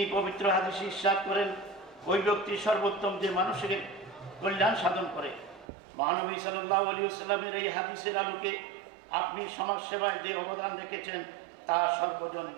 পবিত্র হাদিসে ইরশাদ করেন, ওই ব্যক্তি সর্বোত্তম যে মানুষের কল্যাণ সাধন করে। মহানবী সাল্লাল্লাহু আলাইহি ওয়াসাল্লামের এই হাদিসের আলোকে আপনি সমাজ সেবায় যে অবদান রেখেছেন তা সর্বজন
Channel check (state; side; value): drops out; left; at 5.7 s